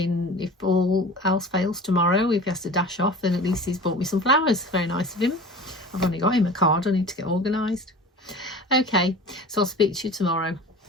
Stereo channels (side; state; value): both; normal; correlation 0.38